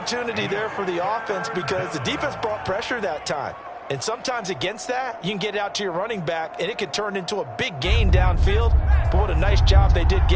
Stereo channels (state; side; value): identical; both; correlation 1.00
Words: there for the offense because the defense brought pressure that time. And sometimes against that, you can get out to your running back, and it could turn into a big gain downfield. But what a nice job they did